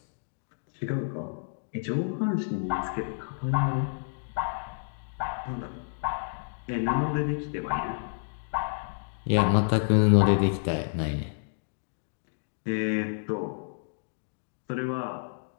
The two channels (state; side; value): silent; right; digital silence